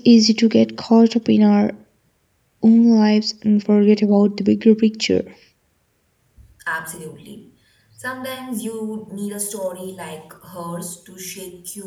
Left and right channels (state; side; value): identical; both; correlation 1.00